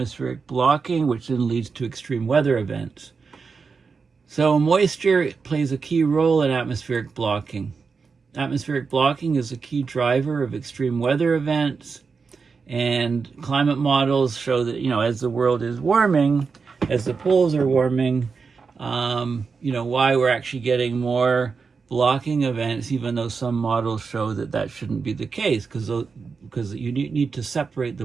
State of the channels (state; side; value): quieter; left; 5.1 dB